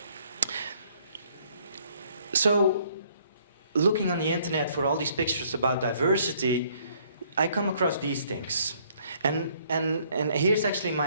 So, looking on the internet for all these pictures about diversity, I come across these things. And here's actually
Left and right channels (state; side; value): inverted; both; correlation -0.64